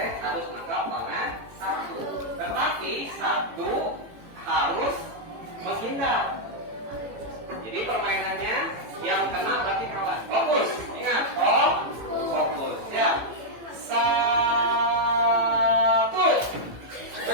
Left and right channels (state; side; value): late; left; 18 ms